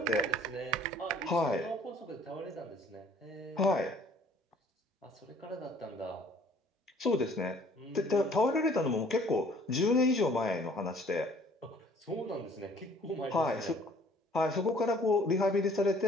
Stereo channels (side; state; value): both; normal; correlation 0.56